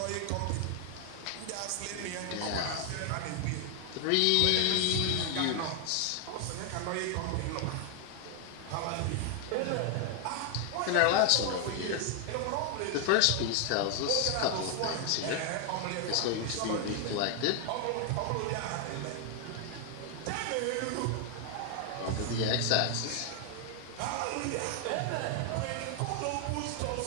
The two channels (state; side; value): different; both; correlation 0.00